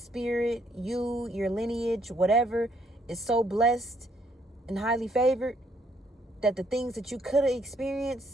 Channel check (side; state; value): both; normal; correlation 0.69